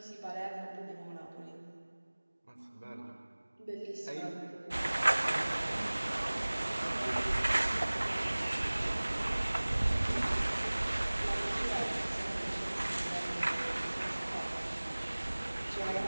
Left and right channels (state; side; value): inverted; both; correlation -1.00